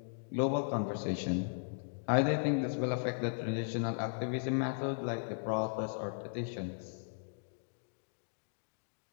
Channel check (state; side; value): silent; right; digital silence